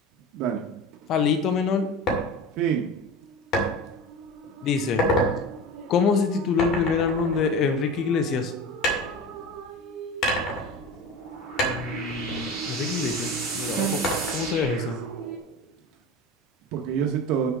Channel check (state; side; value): normal; both; correlation 0.31